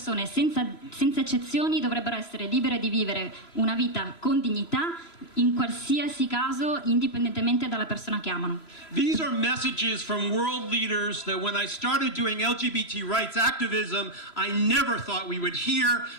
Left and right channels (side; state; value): right; late; 3.0 ms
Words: senza eccezioni, dovrebbero essere libere di vivere una vita con dignità, in qualsiasi caso, indipendentemente dalla persona che amano. These are messages from world leaders that when I started doing LGBT rights activism, I never thought we would hear.